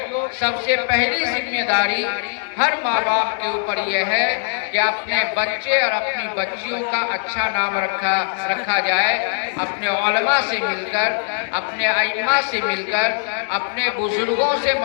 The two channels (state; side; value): silent; right; digital silence